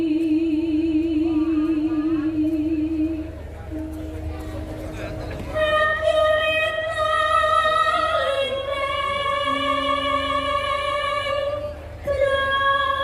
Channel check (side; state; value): both; identical; correlation 1.00